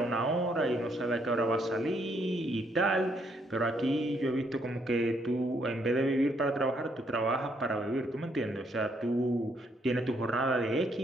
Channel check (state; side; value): normal; both; correlation 0.72